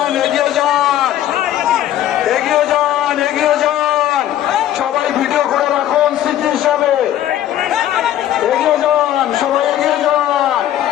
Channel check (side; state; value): right; quieter; 12.1 dB